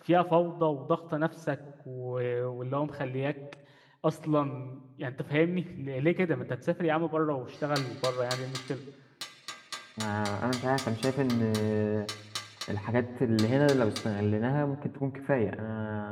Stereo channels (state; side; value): identical; both; correlation 1.00